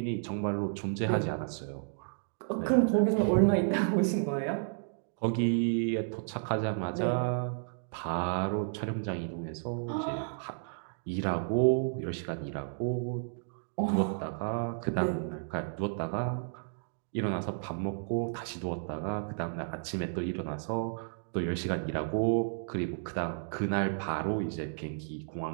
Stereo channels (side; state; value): left; silent; digital silence